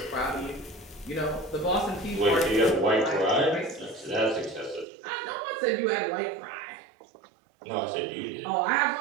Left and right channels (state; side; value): drops out; left; at 4.9 s